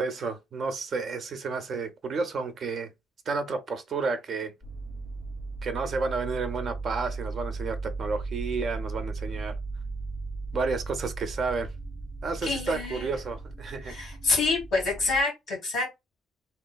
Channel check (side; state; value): both; normal; correlation 0.70